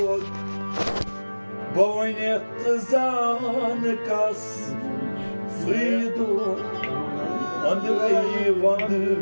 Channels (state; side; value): inverted; both; correlation -1.00